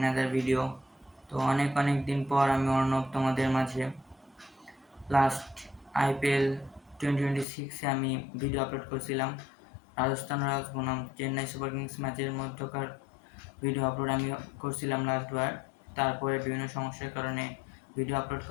video. তো অনেক দিন পর আমি অর্ণব তোমাদের মাঝে লাস্ট আইপিএল 2026-এ আমি ভিডিও আপলোড করছিলাম। রাজস্থান রয়্যালস বনাম চেন্নাই সুপার কিংস ম্যাচের মধ্যকার ভিডিও আপলোড আমি করছিলাম লাস্টবার। তারপরে বিভিন্ন সমস্যার কারণে ভিডিও আপলোড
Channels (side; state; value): right; drops out; at 7.5 s